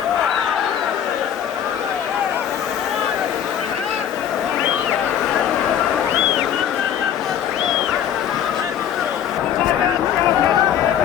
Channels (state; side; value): quieter; right; 9.6 dB